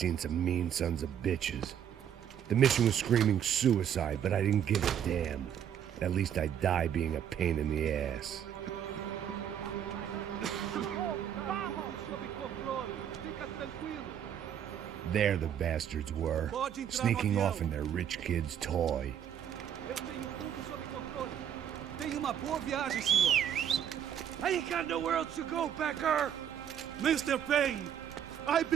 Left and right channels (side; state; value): left; quieter; 9.2 dB